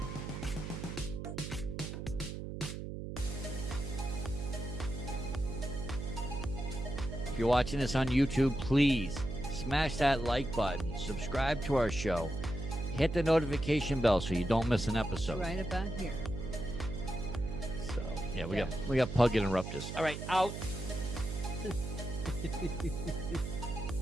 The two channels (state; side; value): noise; right; hum, 6 dB below the sound